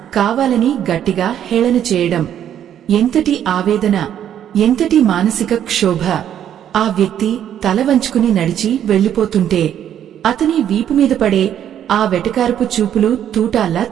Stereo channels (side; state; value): left; quieter; 10.1 dB